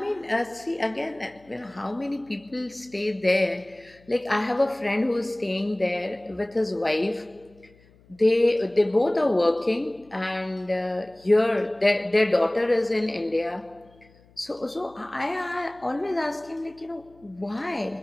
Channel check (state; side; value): noise; left; hum, 29 dB below the sound